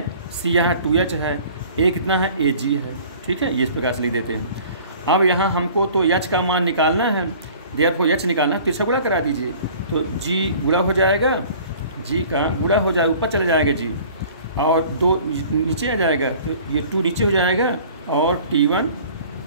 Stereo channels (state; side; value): inverted; both; correlation -0.48